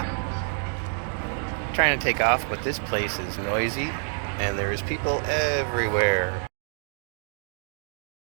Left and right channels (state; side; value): silent; left; 60 dB below the other